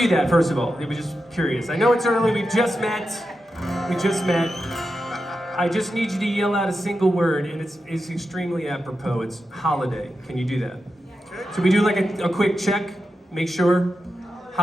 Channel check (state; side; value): normal; both; correlation 0.89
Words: that, first of all? I was just curious. I know it's early, we just met. I just need you to yell out a single word, and it's extremely apropos. It's holiday. Can you do that? So we do like a quick check, make sure.